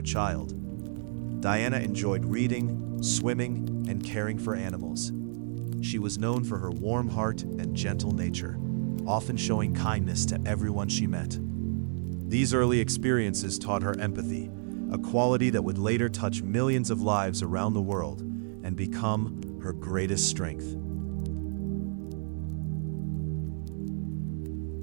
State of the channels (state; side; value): silent; left; 58 dB below the other